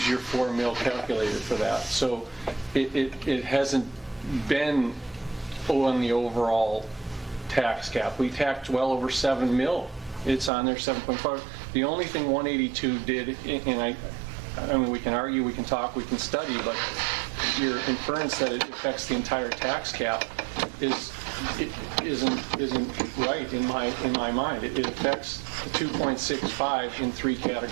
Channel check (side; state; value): left; drops out; at 10.5 s